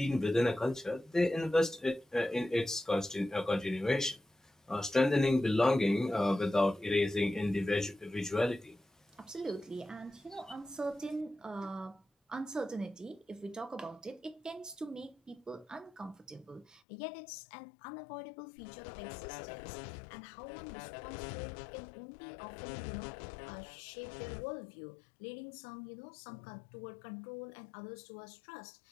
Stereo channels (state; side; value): drops out; right; at 16.8 s